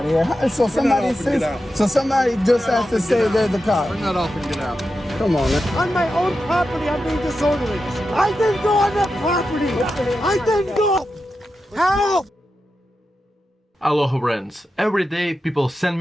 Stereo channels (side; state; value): both; normal; correlation 0.90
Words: of here. So somebody says, so somebody just has to say they're the cop. Bring that off and get out. Come on, man. On my own property, I'm being disorderly. I didn't go on that property. I didn't go. Help! Aloha friends, every day people send